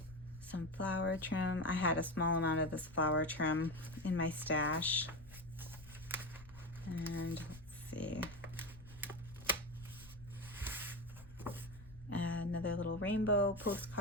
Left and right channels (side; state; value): left; noise; rumble, 18 dB below the sound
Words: Some flower trim. I had a small amount of this flower trim in my stash. And let's see. Another little rainbow